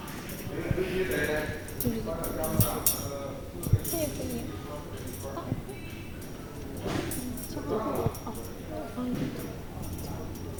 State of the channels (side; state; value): both; identical; correlation 1.00